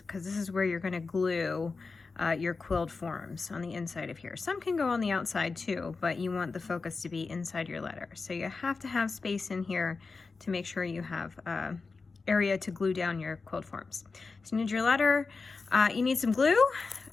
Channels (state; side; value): quieter; right; 4.3 dB